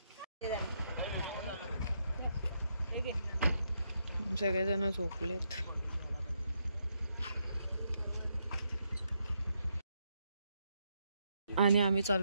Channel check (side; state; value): both; inverted; correlation -0.79